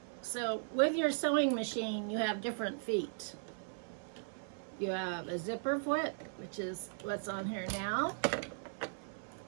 So with your sewing machine, you have different feet. You have a zipper foot, which is what's on here now.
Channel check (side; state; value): left; silent; 53 dB below the other